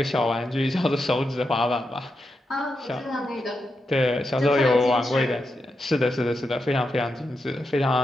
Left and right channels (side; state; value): both; normal; correlation 0.86